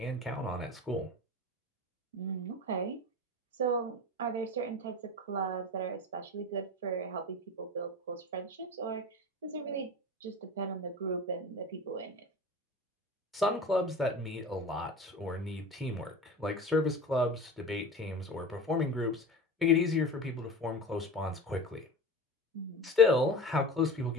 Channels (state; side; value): normal; both; correlation 0.32